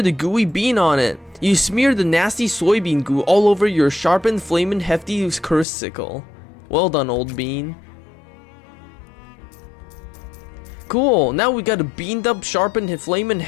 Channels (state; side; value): drops out; right; at 5.7 s